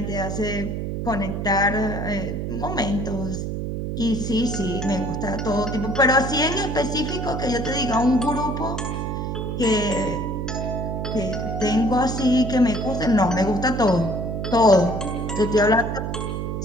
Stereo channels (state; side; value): noise; right; hum, 3 dB below the sound